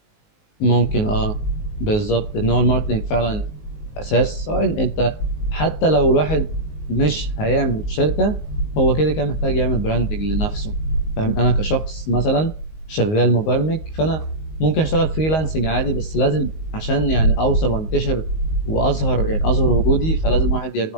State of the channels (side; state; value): right; late; 19 ms